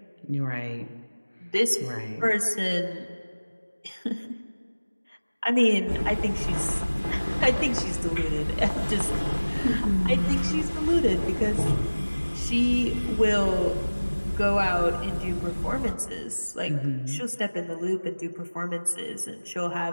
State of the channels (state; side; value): inverted; both; correlation -1.00